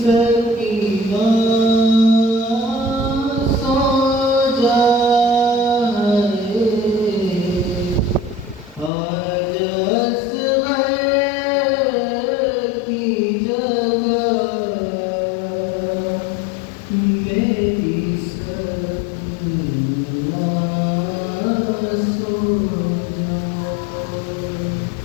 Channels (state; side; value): drops out; right; at 8.9 s